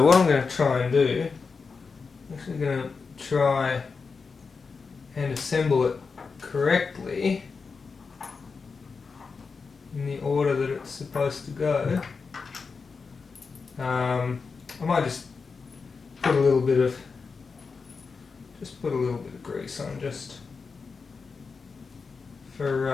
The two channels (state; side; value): quieter; right; 4.9 dB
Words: what I'm going to try and do, I'm actually going to try and assemble it correctly in the order that it's supposed to go. I might just put a little bit of grease on just